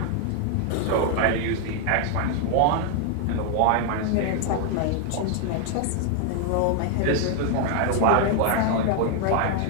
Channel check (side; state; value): both; different; correlation 0.00